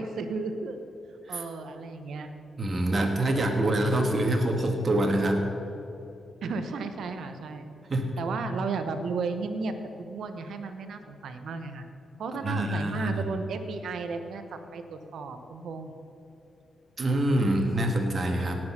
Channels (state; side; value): normal; both; correlation 0.80